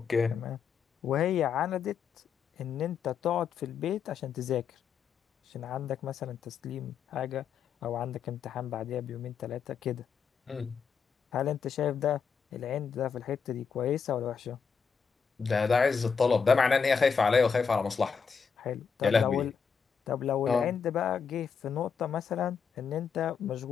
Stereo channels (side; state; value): right; quieter; 6.2 dB